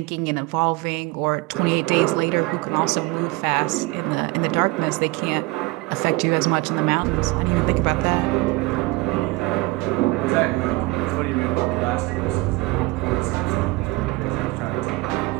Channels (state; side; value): quieter; left; 22.5 dB